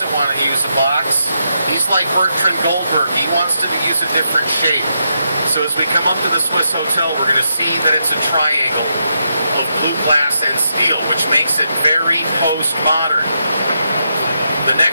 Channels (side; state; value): both; inverted; correlation -0.82